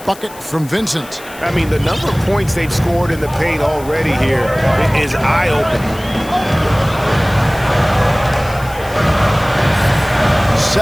bucket from Vincent. I mean, the number of points they've scored in the paint already here is eye-opening.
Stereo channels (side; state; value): left; noise; hiss, 19 dB below the sound